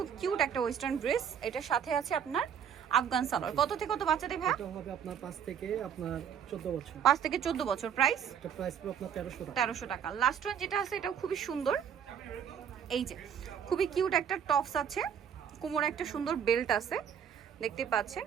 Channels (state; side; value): quieter; left; 8.2 dB